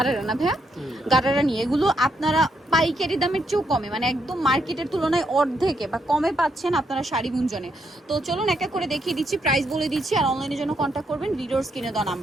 না ভাইয়া, গারারা নিয়ে। এগুলো আপনারা পাইকারি দামের চেয়েও কমে, মানে একদম মার্কেটের তুলনায় অর্ধেকে বা কমে পাচ্ছেন আপনারা শাড়ি গুঞ্জনে। তো চলুন এক এক করে দেখিয়ে দিচ্ছি, প্রাইস বলে দিচ্ছি, আর অনলাইনের জন্য কন্ট্যাক্ট করবেন ভিডিওর স্ক্রিনে দেওয়া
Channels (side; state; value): both; normal; correlation 0.77